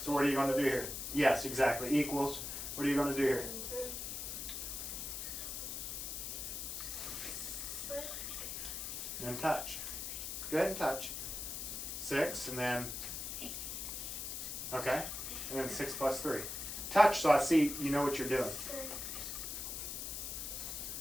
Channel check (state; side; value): noise; left; hiss, 5 dB below the sound